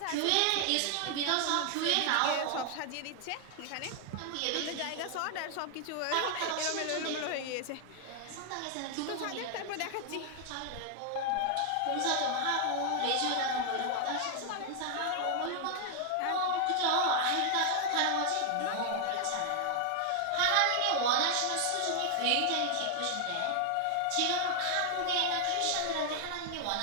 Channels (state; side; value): different; both; correlation 0.00